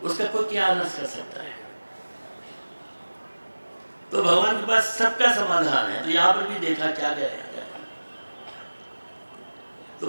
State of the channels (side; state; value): both; inverted; correlation -1.00